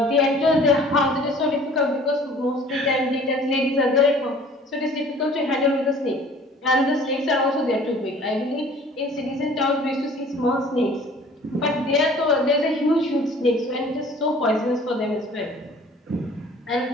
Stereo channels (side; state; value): both; normal; correlation 0.50